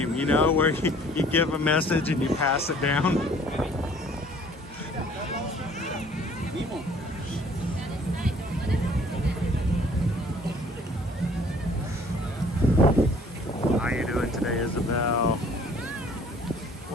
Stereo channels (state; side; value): normal; both; correlation 0.55